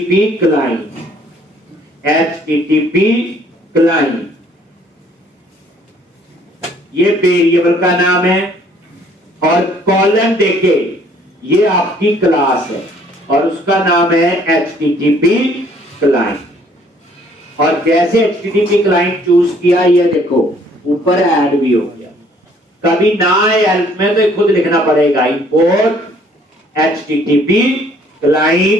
क्लाइंट, HTTP क्लाइंट, ये वेरिएबल का नाम है, और कॉलम देके ये आपकी क्लास है और उसका नाम है HTTP क्लाइंट। और जैसे HTTP क्लाइंट चूज किया, ये देखो ऊपर ऐड भी हो गया। कभी ना आए हेल्प में तो खुद लिखना पड़ेगा, इंपोर्ट HTTP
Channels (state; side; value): normal; both; correlation 0.61